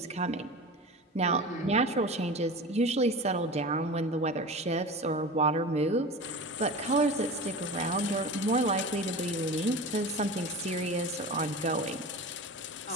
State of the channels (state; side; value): normal; both; correlation 0.31